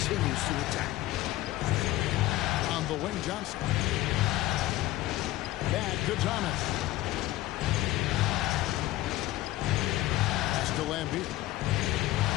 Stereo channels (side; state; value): right; quieter; 16.4 dB